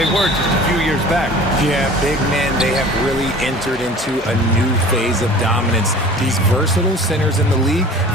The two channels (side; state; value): both; normal; correlation 0.43